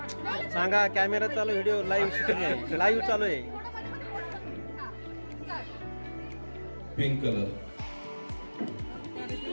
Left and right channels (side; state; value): both; inverted; correlation -1.00